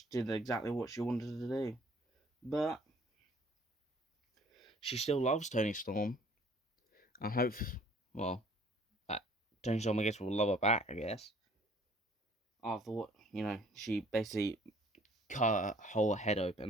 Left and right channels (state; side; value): normal; both; correlation 0.56